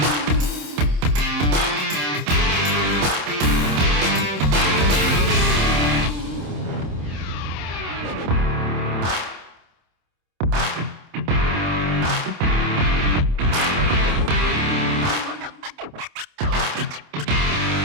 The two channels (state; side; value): late; left; 27 ms